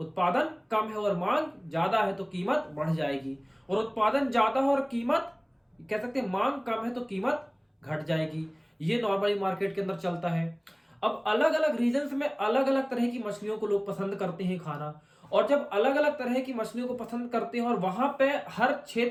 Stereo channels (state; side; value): identical; both; correlation 1.00